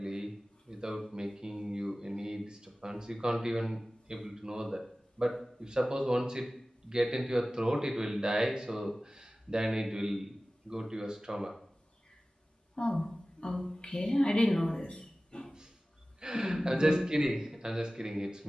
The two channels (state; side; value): normal; both; correlation 0.97